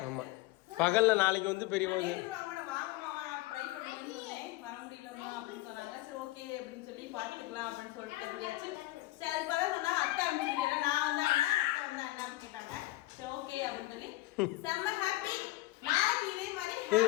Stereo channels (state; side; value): quieter; right; 18.1 dB